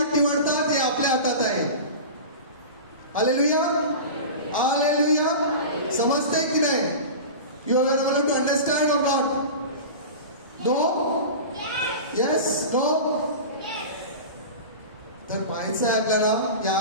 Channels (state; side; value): inverted; both; correlation -0.31